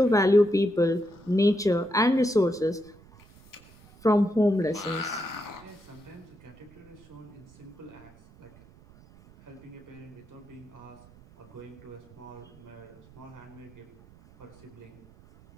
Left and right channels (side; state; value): right; noise; rumble, 24 dB below the sound